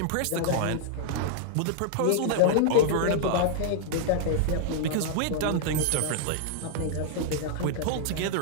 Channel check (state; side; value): different; both; correlation -0.01